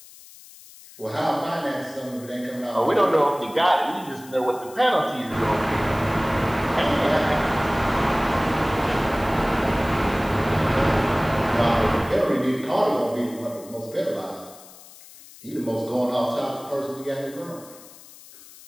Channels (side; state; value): left; noise; hiss, 20 dB below the sound